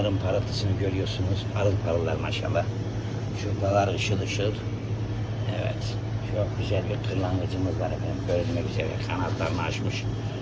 parıltısını görüyorsunuz, parıl parıllar maşallah. Şuradalar ışıl ışıl. Evet, çok güzel bir kırlangıcımız var efendim, görülmek üzere kanatlarını açmış,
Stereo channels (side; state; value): both; identical; correlation 1.00